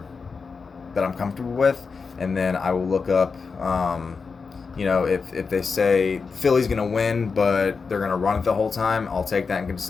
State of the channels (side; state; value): right; quieter; 5.0 dB